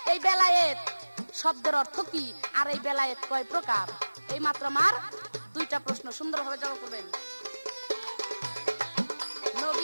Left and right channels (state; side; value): inverted; both; correlation -1.00